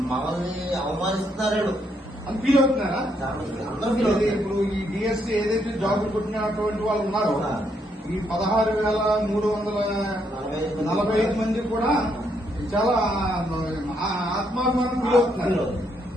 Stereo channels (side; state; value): both; normal; correlation 0.75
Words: మమ్మల్ని అవమానిస్తున్నారు అని ఫీల్ అవుతున్నారా? అందరూ ఫీల్ అవుతారు. ఇప్పుడు ఈ డిఎస్సీ ఏదైతే జాబులు కొట్టినటువంటి వాళ్ళు ఉన్నారో ఈ 16,345 మంది కూడా చాలా ఆత్మాభిమానం